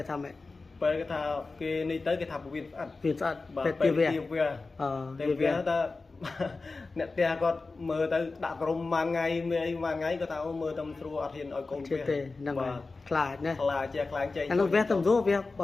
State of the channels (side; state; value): right; quieter; 3.8 dB